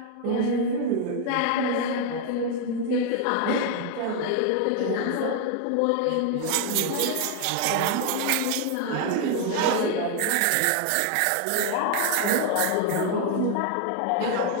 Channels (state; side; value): different; both; correlation 0.00